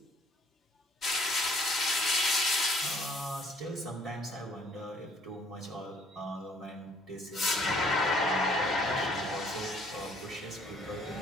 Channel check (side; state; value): both; normal; correlation 0.60